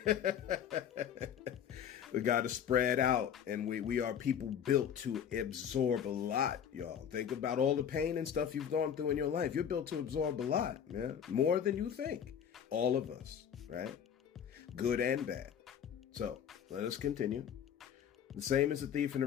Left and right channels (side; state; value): right; quieter; 8.5 dB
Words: We got to spread out, and we are people built to absorb a lot, y'all. Think about all the pain and stuff you've gone through in your life. You're built to absorb a lot, man. More than you think. All of us, right? Good and bad. So let us continue. The same as the thief and the